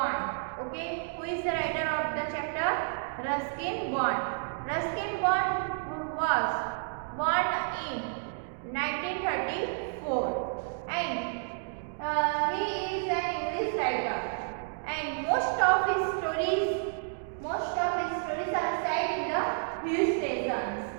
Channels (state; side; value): silent; left; digital silence